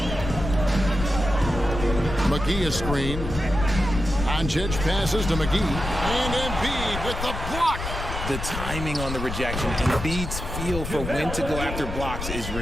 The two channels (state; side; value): noise; left; rumble, 6 dB below the sound